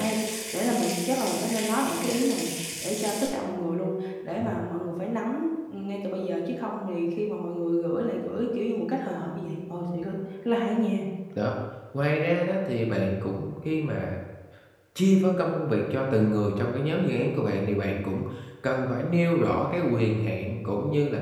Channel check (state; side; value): identical; both; correlation 1.00